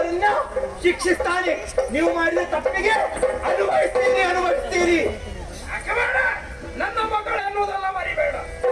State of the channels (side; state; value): both; identical; correlation 1.00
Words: ಶಿಕ್ಷಿಸ್ತಾನೆ. ನೀವು ಮಾಡಿದ ತಪ್ಪಿಗೆ ಅನುಭವಿಸ್ತೀರಿ. ನನ್ನ ಮಕ್ಕಳು ಅನ್ನೋದಲ್ಲ ಮರಿಬೇಡ.